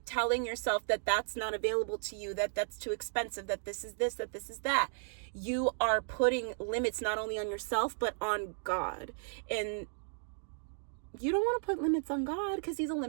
telling yourself that that's not available to you, that that's too expensive, that this is this, that this is that, you are putting limits not only on yourself but on God. And you don't want to put limits on God because he's a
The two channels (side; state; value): left; silent; digital silence